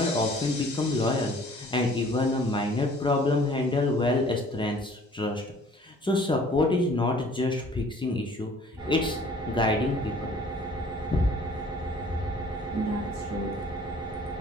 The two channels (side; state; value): both; normal; correlation 0.53